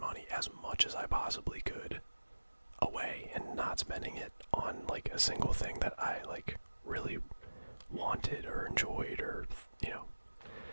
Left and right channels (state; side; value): inverted; both; correlation -1.00